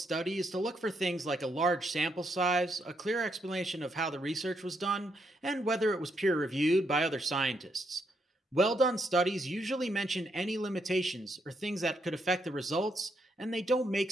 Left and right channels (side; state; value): both; normal; correlation 0.77